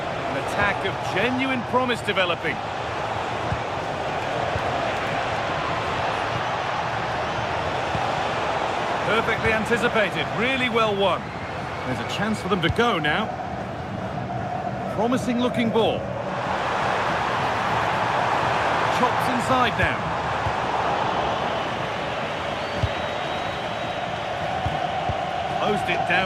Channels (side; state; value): both; identical; correlation 1.00